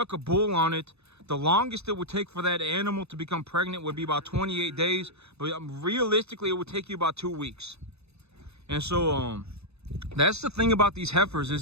a bull on it, the longest it would take for that animal to become pregnant would be about 28 days. But realistically, it would take you about 2 weeks. And so that's the thing about these heifers,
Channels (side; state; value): left; late; 0.79 ms